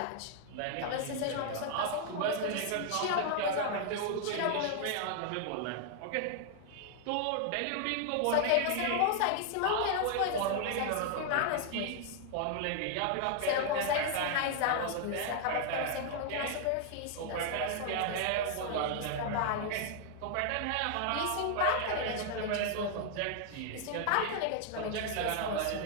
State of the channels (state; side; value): different; both; correlation 0.00